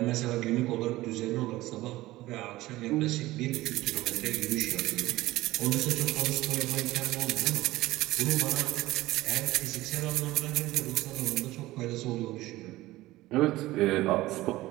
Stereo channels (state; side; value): quieter; left; 17.7 dB